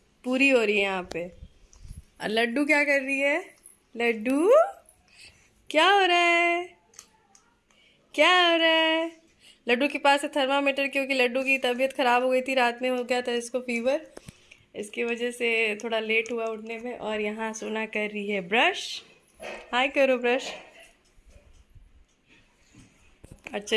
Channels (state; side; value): identical; both; correlation 1.00